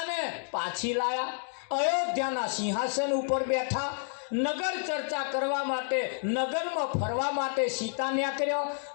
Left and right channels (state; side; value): silent; right; digital silence